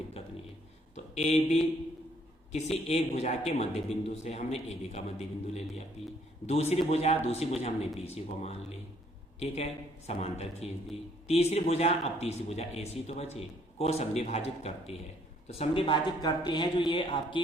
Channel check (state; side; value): normal; both; correlation 0.65